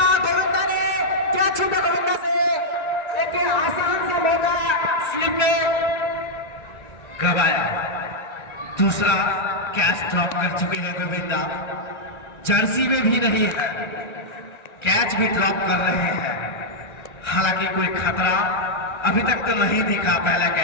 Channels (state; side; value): late; right; 1.9 ms